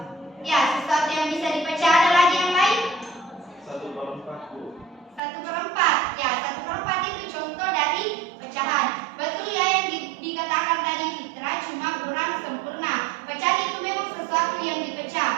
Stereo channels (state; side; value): drops out; left; at 5.2 s